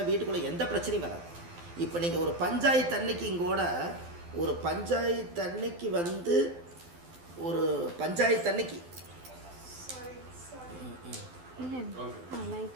வீட்டுக்குள்ளே எந்த பிரச்சனையும் வராது. இப்போ நீங்கள் ஒரு பஞ்சாயத்து அன்னைக்கு இங்கோட ஒரு பஞ்சாயத்து அன்னைக்கு வந்து ஒரு பஞ்சாயத்து அன்னைக்கு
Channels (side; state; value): left; late; 12 ms